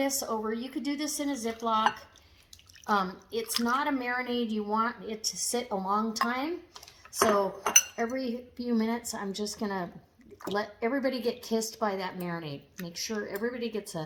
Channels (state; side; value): identical; both; correlation 1.00